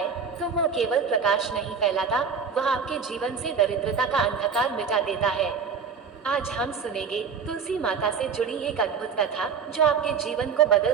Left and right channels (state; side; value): quieter; left; 6.0 dB